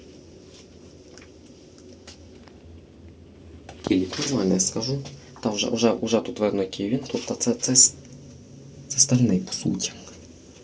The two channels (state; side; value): identical; both; correlation 1.00